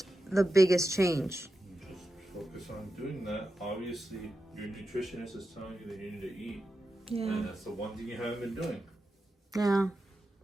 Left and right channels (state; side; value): normal; both; correlation 0.90